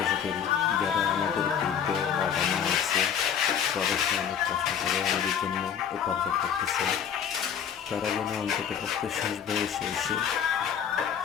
করি যারা আমাদের বৃদ্ধ বাবা মা আছে, প্রবাসে অনেক কষ্ট করে আমাদের জন্য উপার্জন করতেছে, তারা যেন অন্তত পক্ষে শেষ বয়সে এসে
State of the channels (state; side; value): quieter; right; 8.2 dB